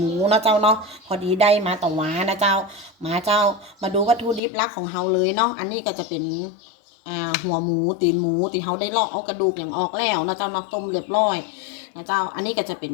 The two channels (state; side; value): drops out; right; at 4.4 s